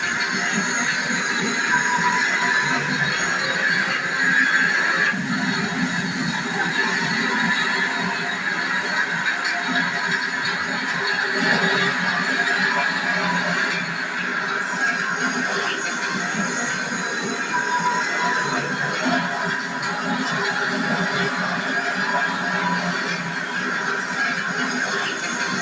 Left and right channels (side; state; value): both; identical; correlation 1.00